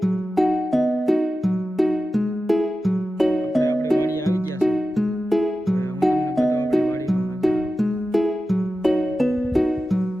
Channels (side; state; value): both; normal; correlation 0.93